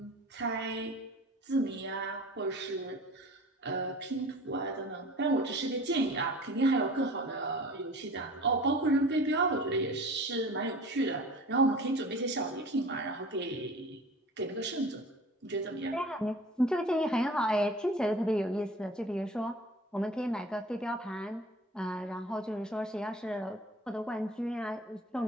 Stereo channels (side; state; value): both; normal; correlation 0.42